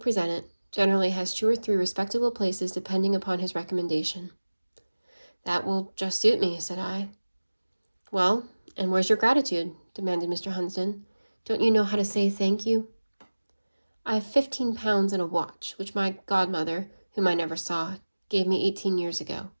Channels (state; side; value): inverted; both; correlation -1.00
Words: it generally has 2 or 3 respectable places depending upon his recommendation. That will just suit me, said I. Well, and where's your gratitude? Demanded Mr. Hunsden. Don't you know how to say thank you? I have £15 in a watch, which my godmother, whom I never saw, gave me 18 years ago,